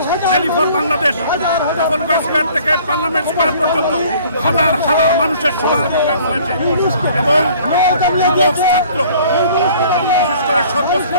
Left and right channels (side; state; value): both; inverted; correlation -0.53